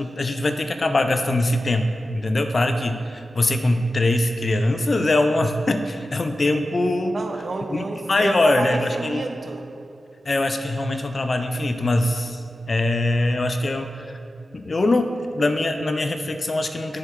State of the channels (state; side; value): normal; both; correlation 0.93